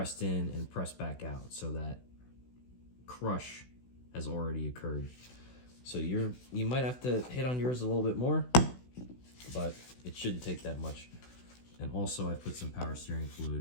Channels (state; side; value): late; right; 16 ms